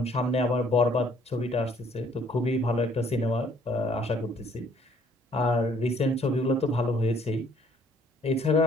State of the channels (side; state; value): both; normal; correlation 0.61